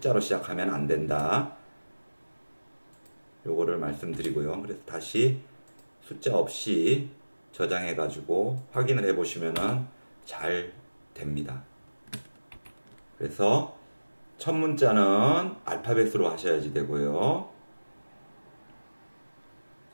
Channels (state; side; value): inverted; both; correlation -1.00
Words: 시작하면 안 된다. 요거를 말씀드리고요. 그래서 다시 숫자 없이 저장해 가지고 확인을 해 보시면은 잘 됩니다. 그래서 첫 문자는 알파벳으로 하셔야지 되고요.